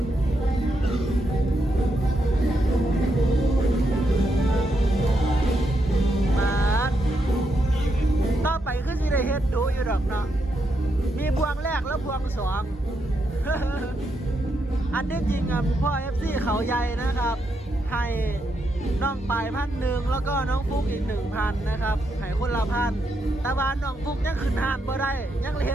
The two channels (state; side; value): normal; both; correlation 0.81